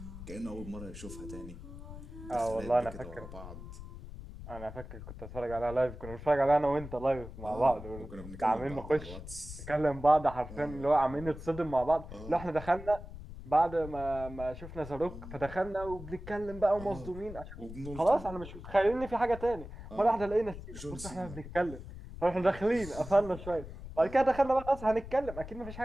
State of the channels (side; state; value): left; noise; rumble, 12 dB below the sound